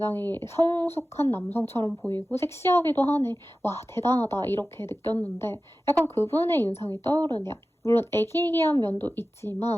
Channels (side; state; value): both; normal; correlation 0.95